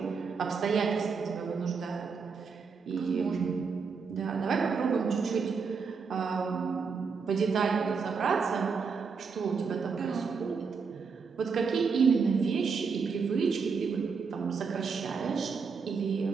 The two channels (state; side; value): quieter; left; 5.4 dB